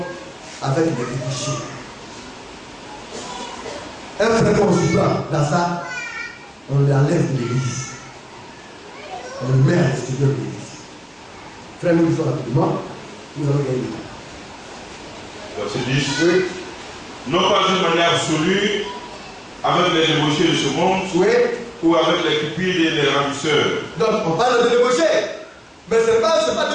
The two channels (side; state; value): both; identical; correlation 1.00